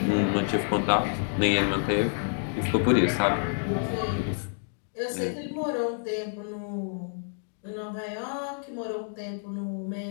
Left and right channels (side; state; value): right; silent; digital silence